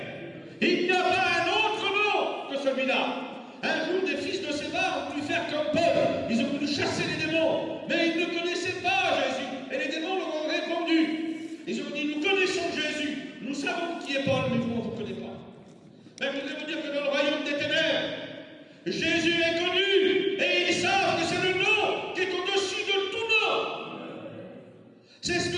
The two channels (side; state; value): both; identical; correlation 1.00